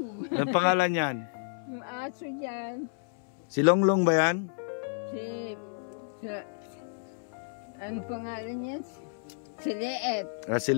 Ang pangalan yan? Yung aso dyan. Si Longlong ba yan? Ang pangalan niya? Si Leet. Si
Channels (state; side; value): silent; right; 57 dB below the other